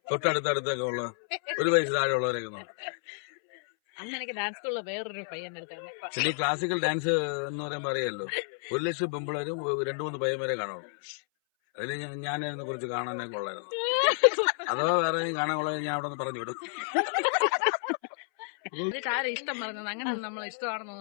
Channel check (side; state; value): right; silent; 58 dB below the other